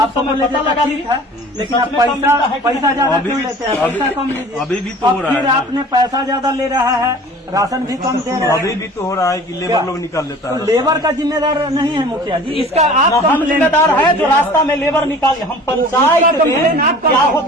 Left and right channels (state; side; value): normal; both; correlation 0.44